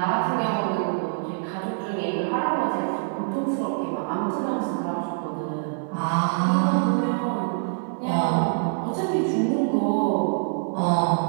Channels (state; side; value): silent; left; 62 dB below the other